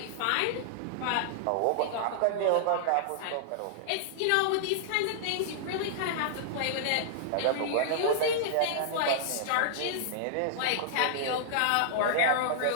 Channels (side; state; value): both; different; correlation -0.01